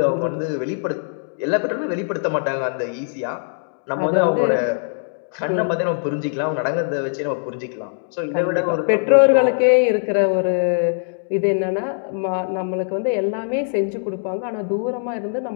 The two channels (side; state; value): right; silent; digital silence